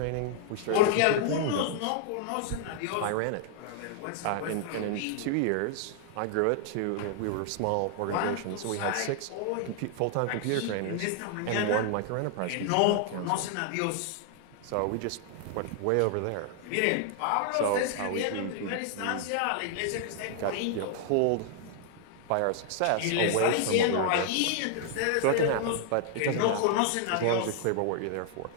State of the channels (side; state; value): both; different; correlation 0.00